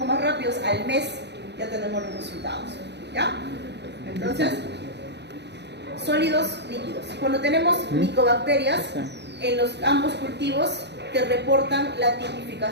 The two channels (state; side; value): late; left; 0.50 ms